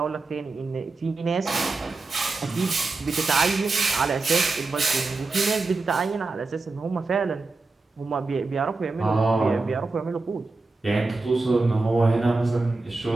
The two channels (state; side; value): quieter; left; 3.6 dB